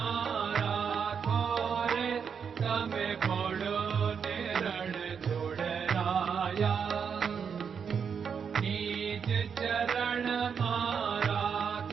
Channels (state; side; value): quieter; left; 6.8 dB